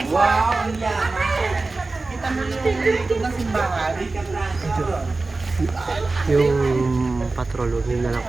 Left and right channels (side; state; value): left; quieter; 3.5 dB